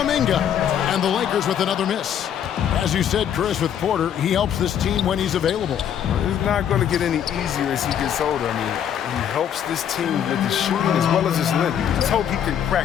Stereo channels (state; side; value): quieter; right; 9.3 dB